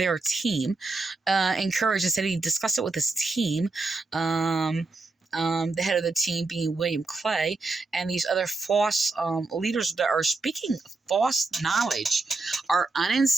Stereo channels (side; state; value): left; quieter; 3.6 dB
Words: team, encouraged and said he discussed it with his team, the head of the team being William Clay, and these other false leaders that are speaking false knowledge, are